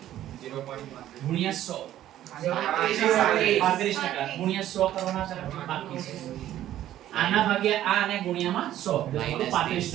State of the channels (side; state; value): left; quieter; 12.7 dB